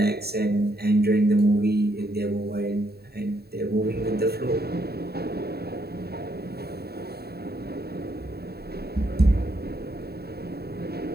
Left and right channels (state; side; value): late; left; 0.46 ms